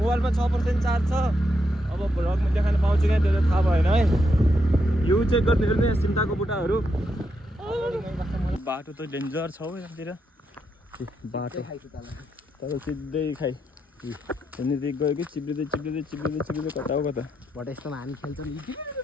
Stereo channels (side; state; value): both; normal; correlation 0.81